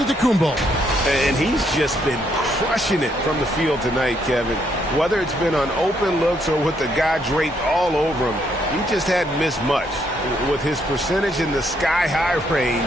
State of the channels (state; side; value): normal; both; correlation 0.73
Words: And he's just been crushing it from the field tonight, Kevin. Whether it's been on open looks or with the guy draped all over him, he just hadn't missed much. With his percentage in the sky-high